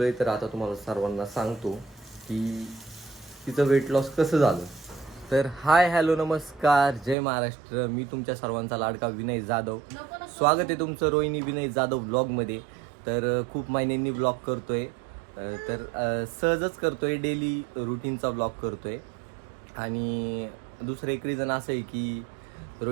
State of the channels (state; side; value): drops out; left; at 7.2 s